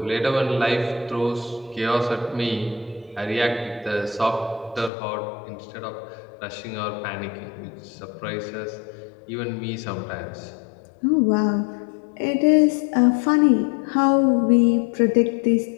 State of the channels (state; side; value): drops out; right; at 4.9 s